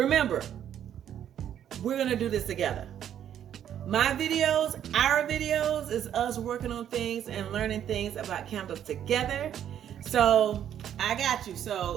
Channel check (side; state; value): left; quieter; 10.0 dB